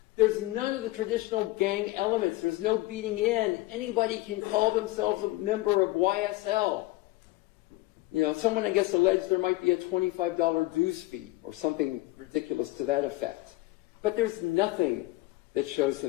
there's none of the traditional gang elements. There's no beating in. Anybody can call themselves a member of YSL. You know, someone, I guess, alleged there might be a $25 dues fee or something ridiculous to that effect. But there's nothing that shows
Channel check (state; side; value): quieter; right; 19.1 dB